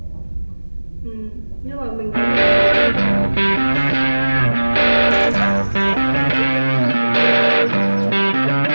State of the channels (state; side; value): inverted; both; correlation -1.00